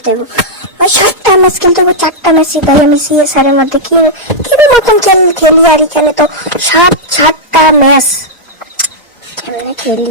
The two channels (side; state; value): both; normal; correlation -0.07